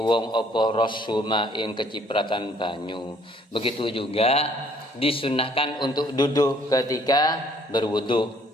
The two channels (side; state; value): both; normal; correlation 0.61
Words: apa rasuma ing kecipratan banyu. Begitu juga disunahkan untuk duduk ketika berwudu,